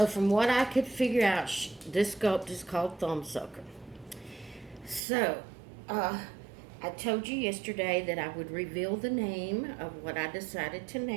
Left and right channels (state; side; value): drops out; left; at 5.0 s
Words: from what I could figure out, this sculpt is called thumb sucker. So, I told you yesterday that I would reveal the name of what I decided to